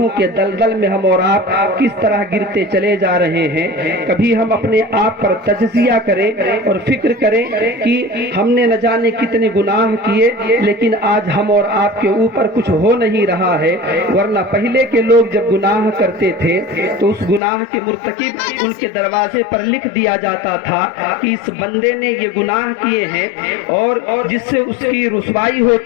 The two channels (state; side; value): drops out; right; at 17.4 s